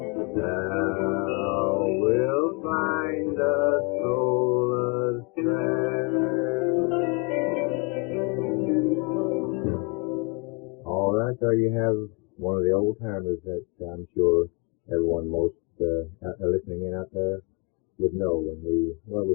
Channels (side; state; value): right; quieter; 30.5 dB